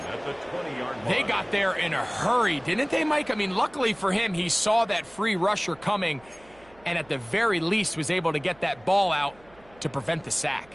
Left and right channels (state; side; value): noise; right; hum, 27 dB below the sound